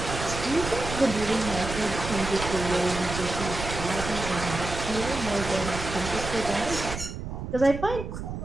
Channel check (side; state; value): right; noise; rumble, 7 dB below the sound